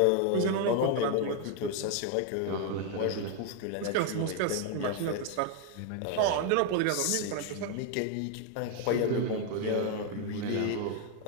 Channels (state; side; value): different; both; correlation 0.01